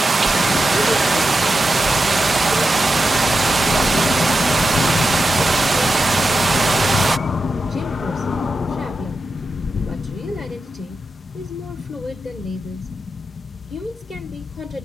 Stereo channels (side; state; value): both; normal; correlation 0.90